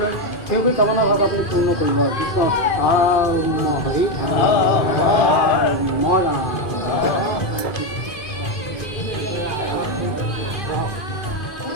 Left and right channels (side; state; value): right; late; 2.5 ms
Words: সেইবোৰ কামনা ভাগ আপুনি পূৰ্ণ কৰিব। কৃষ্ণ হৰি মৰা